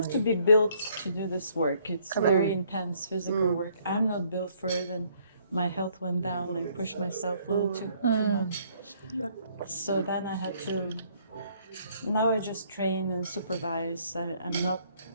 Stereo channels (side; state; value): both; inverted; correlation -0.65